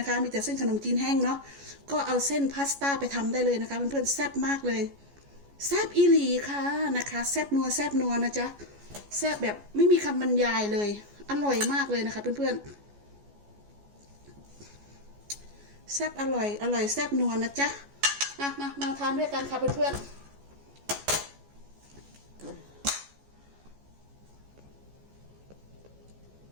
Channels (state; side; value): late; left; 14 ms